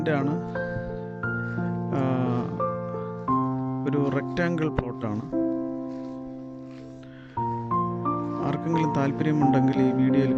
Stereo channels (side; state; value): both; identical; correlation 1.00